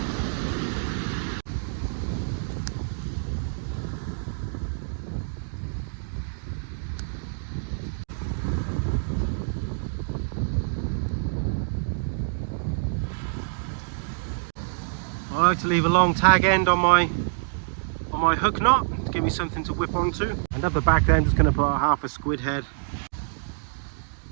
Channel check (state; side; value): silent; left; digital silence